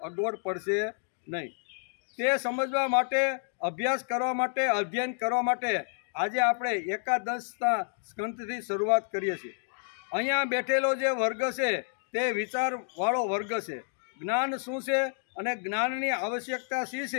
અગવડ પડશે નહીં. તે સમજવા માટે, અભ્યાસ કરવા માટે, અધ્યયન કરવા માટે આજે આપણે 11 સ્કંદથી શરૂઆત કરીએ છીએ. અહીંયા બેઠેલો જે વર્ગ છે તે વિચારવાળો વર્ગ છે. જ્ઞાન શું છે અને જ્ઞાનની આવશ્યકતા શી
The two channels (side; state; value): right; silent; 58 dB below the other